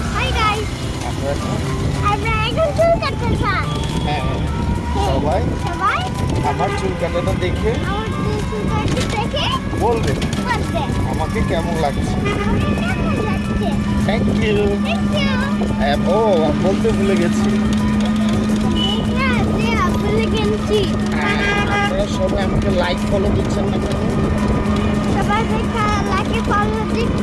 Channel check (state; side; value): identical; both; correlation 1.00